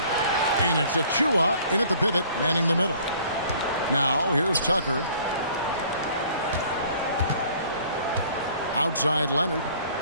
And it's Achua in at the pivot, manning the middle. Now here's Tucker. Outside Leonard.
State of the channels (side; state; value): both; inverted; correlation -0.54